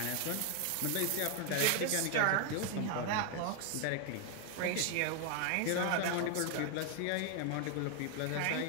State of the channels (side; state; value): both; different; correlation 0.01